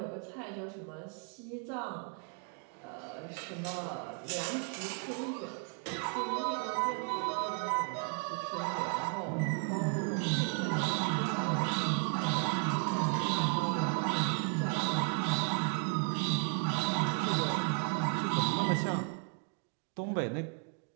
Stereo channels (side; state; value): left; quieter; 36.1 dB